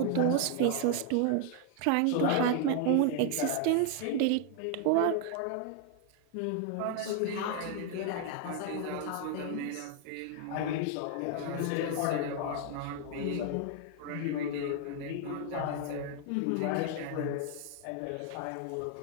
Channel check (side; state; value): both; different; correlation 0.00